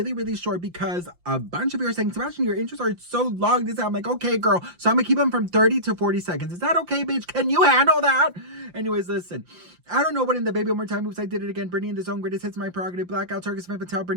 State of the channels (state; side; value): late; left; 5.8 ms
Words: short because a bunch of you are saying, Sebastian, your intros are so long. I'm like, okay, girl. So I'm going to keep them from 30 to 40 seconds. Is that okay, bitch? Can you handle that? Anyways, listen, I don't know what in the baby one more time moves I did it again. Britney in the zone, greatest hits, my prerogative, blackout, Target, Smith, Patel,